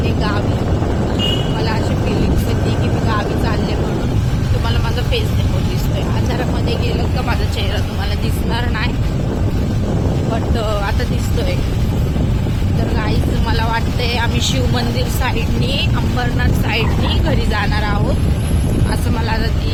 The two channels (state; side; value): identical; both; correlation 1.00